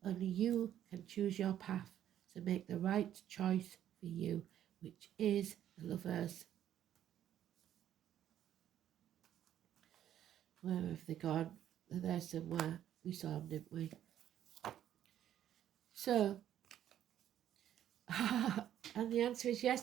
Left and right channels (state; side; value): quieter; left; 11.0 dB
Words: only you can choose your path, so make the right choice for you, which is the Lovers. Where have they gone? They're there somewhere. We saw them, didn't we? So, and the answer is yes,